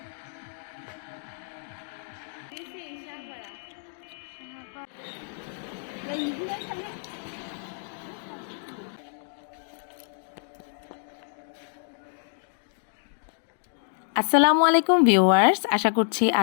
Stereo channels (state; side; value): silent; right; digital silence